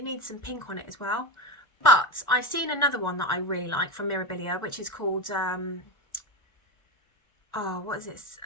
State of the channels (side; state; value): right; late; 1.4 ms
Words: needs some pink on it as well. But I've seen another one that I really like from Mirabilia, which is called what is it?